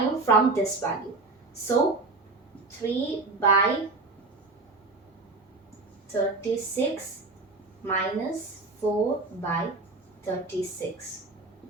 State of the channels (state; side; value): quieter; left; 3.4 dB